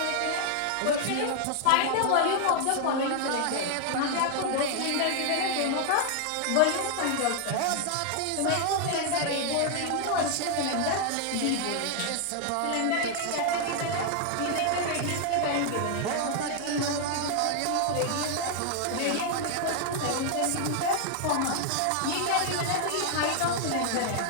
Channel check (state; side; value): different; both; correlation 0.00